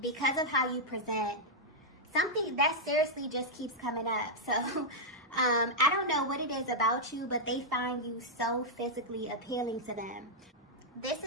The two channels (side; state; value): both; normal; correlation -0.04